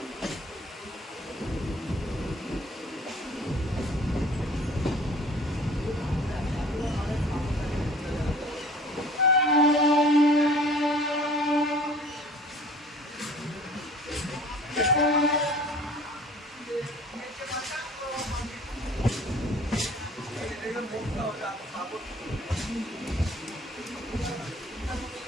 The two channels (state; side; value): normal; both; correlation 0.49